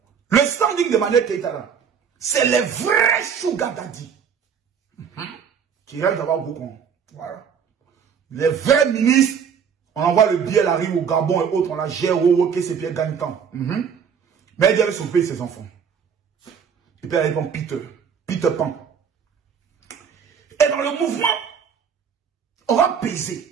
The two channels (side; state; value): left; quieter; 7.2 dB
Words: Le standing d'Emmanuel Keïta là, c'est les vrais sugar daddy. Qui rêvent d'avoir beaucoup. Voilà. Les vrais ministres, on envoie le billet, elle arrive au Gabon et autres, on la gère, ok, c'est bien gagne temps. Mais elle avait sauvé ses enfants. Et puis elle répond Peter Pan. Et dans le mouvement, on va